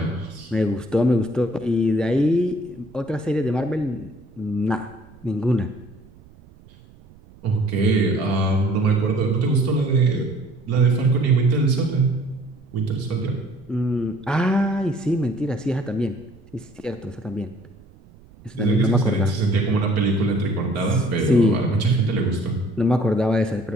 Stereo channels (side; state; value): right; noise; rumble, 24 dB below the sound